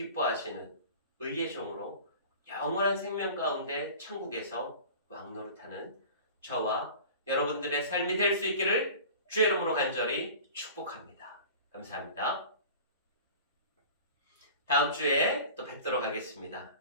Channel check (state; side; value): inverted; both; correlation -0.39